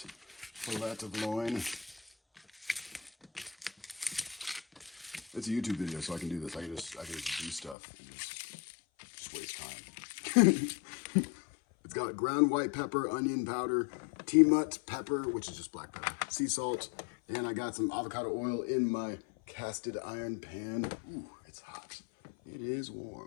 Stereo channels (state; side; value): drops out; right; at 7.8 s